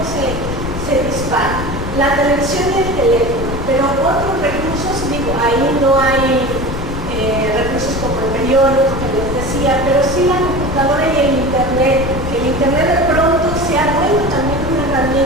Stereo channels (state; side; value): noise; left; rumble, 7 dB below the sound